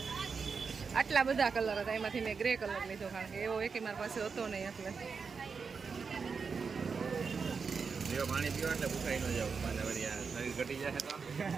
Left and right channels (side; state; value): left; quieter; 5.4 dB